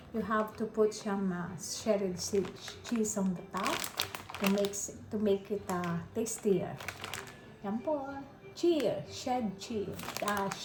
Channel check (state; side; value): identical; both; correlation 1.00